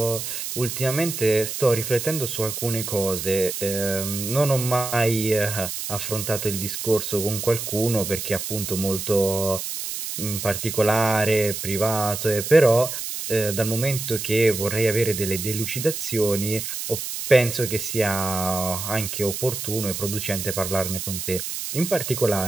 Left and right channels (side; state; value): right; noise; hiss, 5 dB below the sound